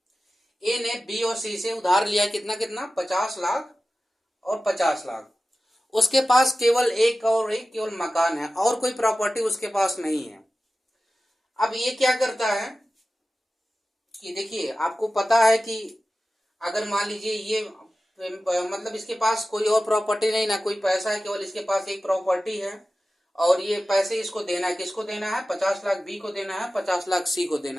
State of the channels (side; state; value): both; normal; correlation 0.95